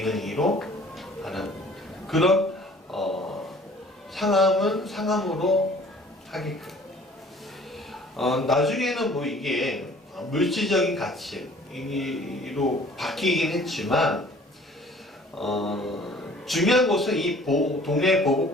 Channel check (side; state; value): both; normal; correlation 0.52